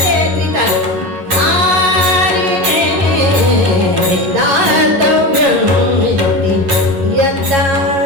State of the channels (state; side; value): late; left; 10 ms